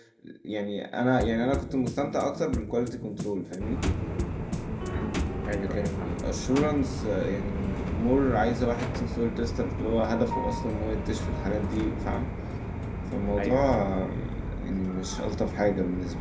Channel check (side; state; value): both; identical; correlation 1.00